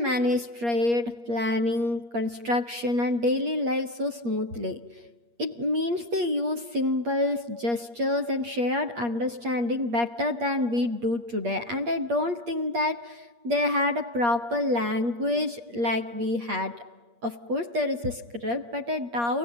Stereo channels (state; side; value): late; left; 8.5 ms